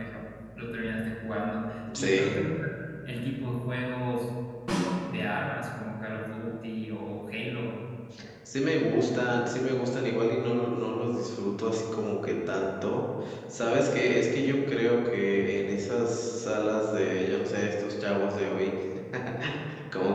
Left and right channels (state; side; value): identical; both; correlation 1.00